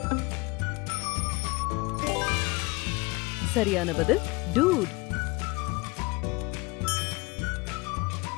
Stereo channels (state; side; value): quieter; right; 25.0 dB